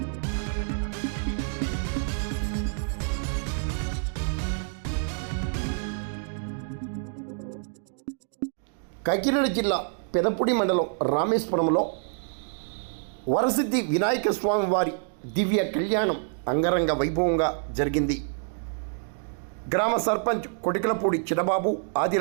కాకినాడ జిల్లా పెదపూడి మండలం రామేశ్వరంలో వరసిద్ధి వినాయక స్వామి వారి దివ్య కళ్యాణం అంగరంగ వైభవంగా జరిగింది. గ్రామ సర్పంచ్ కొటికలపూడి చిన్నబాబు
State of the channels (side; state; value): left; silent; 60 dB below the other